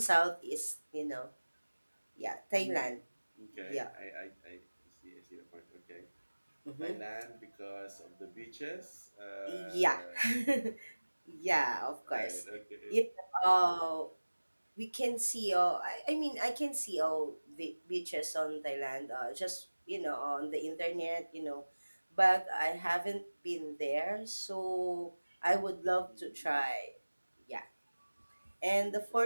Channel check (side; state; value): both; inverted; correlation -1.00